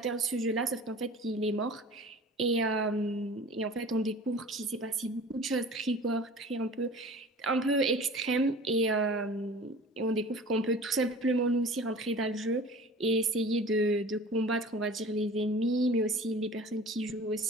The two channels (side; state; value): both; normal; correlation 0.41